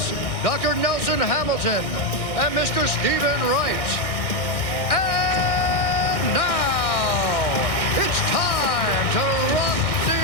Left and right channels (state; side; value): late; right; 1.6 ms